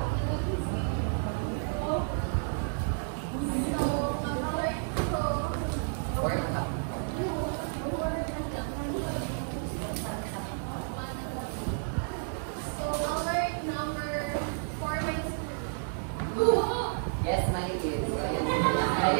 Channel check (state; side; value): silent; left; 57 dB below the other